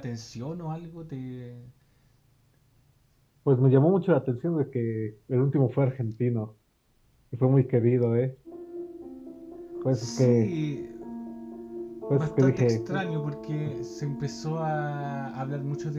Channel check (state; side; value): identical; both; correlation 1.00